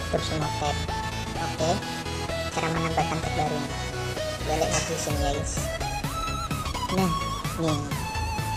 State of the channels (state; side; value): identical; both; correlation 1.00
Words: tutup semua tab. Oke, cara menambahkan tab baru ini, balik lagi sini ya guys. Nah, nih